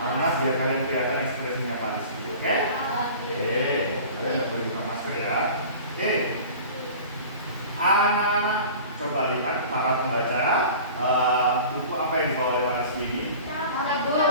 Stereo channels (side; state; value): both; inverted; correlation -0.41